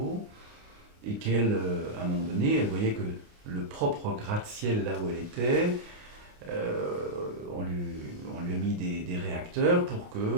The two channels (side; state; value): left; late; 29 ms